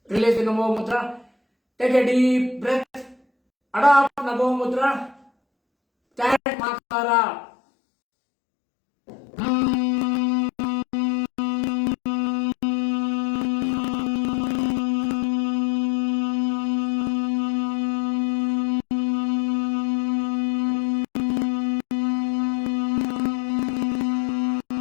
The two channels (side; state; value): right; drops out; at 6.4 s